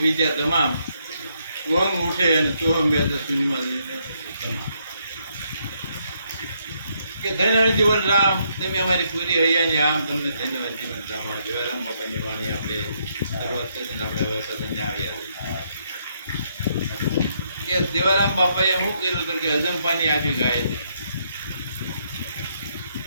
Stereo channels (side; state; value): both; inverted; correlation -0.74